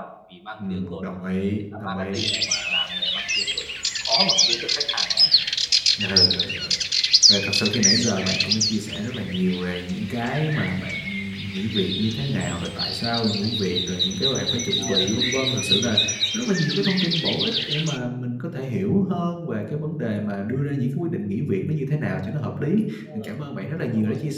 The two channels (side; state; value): both; identical; correlation 1.00